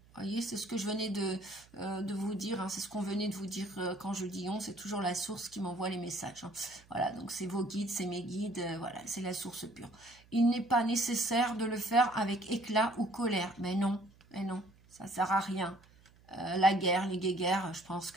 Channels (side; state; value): right; noise; hum, 27 dB below the sound